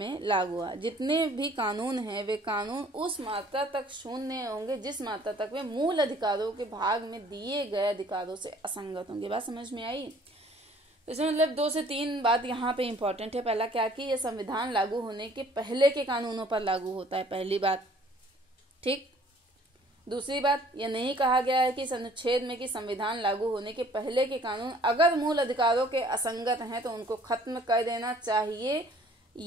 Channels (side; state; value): both; normal; correlation 0.56